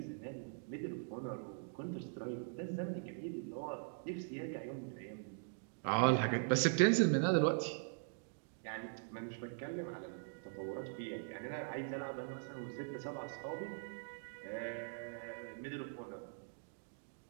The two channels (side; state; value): left; silent; digital silence